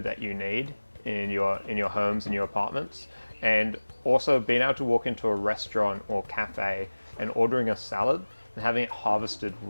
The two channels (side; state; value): both; inverted; correlation -1.00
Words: that you need in your homes, in your apartments. And also being able to walk into a restaurant or cafe and ordering a salad and having it harvested